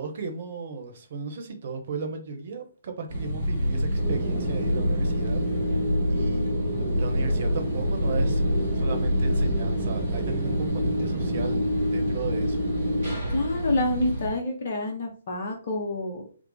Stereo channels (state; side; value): inverted; both; correlation -0.80